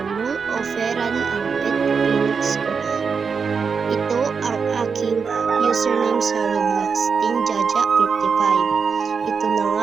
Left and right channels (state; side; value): quieter; left; 5.7 dB